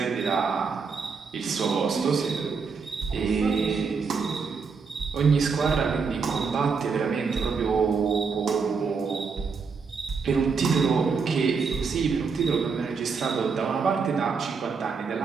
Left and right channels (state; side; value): quieter; left; 5.2 dB